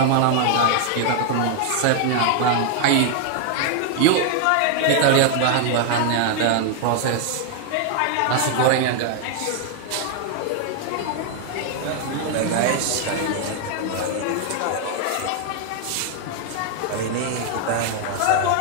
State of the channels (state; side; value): different; both; correlation 0.00